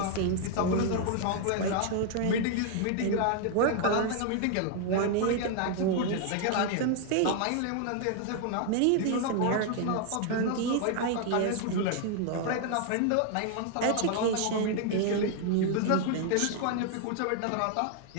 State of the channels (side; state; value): both; different; correlation 0.00